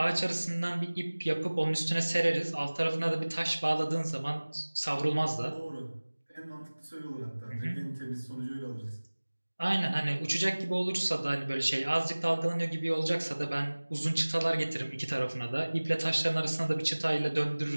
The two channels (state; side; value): inverted; both; correlation -1.00